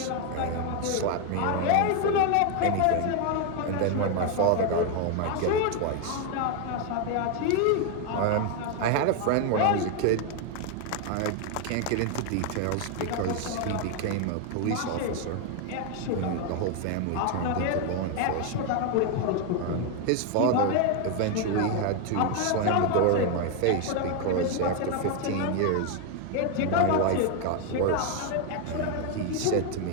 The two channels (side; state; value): both; different; correlation 0.01